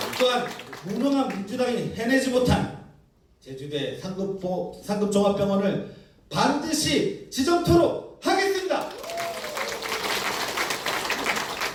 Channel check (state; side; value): identical; both; correlation 1.00